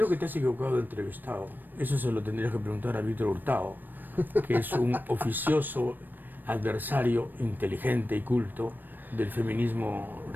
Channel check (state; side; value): late; left; 0.091 ms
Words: que te has equivocado de entrevistado. Eso se lo tendrías que preguntar a Víctor Hurtado, que es un oficioso adversario inteligente y culto del feminismo